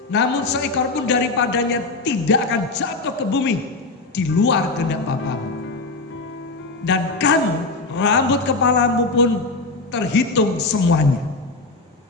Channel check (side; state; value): right; quieter; 3.5 dB